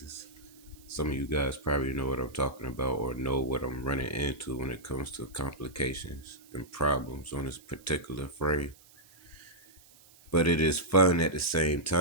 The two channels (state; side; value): noise; right; hiss, 26 dB below the sound